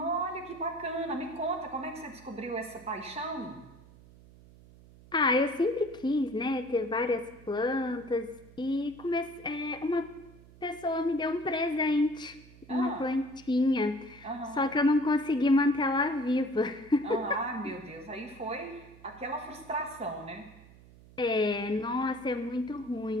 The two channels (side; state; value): right; noise; hum, 22 dB below the sound